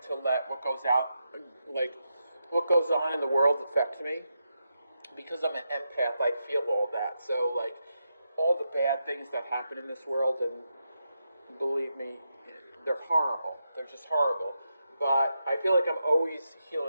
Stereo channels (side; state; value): both; inverted; correlation -0.85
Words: to let what goes on in the world affect me. Because I'm an empath, I feel all that. So, like, all the bad things that happen in this world, and believe me, they're horrible. They're just horrible. But I feel like I'm always